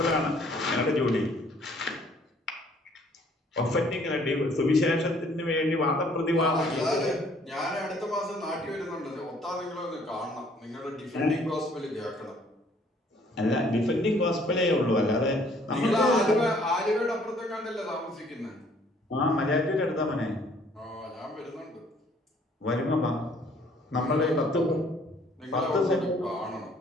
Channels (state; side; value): normal; both; correlation 0.60